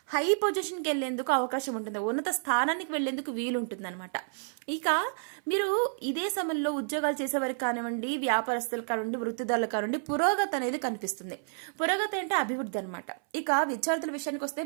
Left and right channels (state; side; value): silent; left; 58 dB below the other